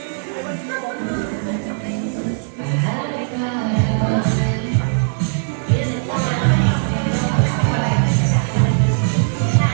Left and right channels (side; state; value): left; silent; digital silence